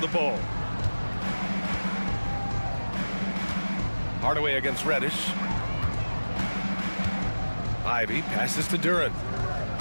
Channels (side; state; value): both; inverted; correlation -1.00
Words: ball. Hardaway against Reddish. Ivy passes to Duren.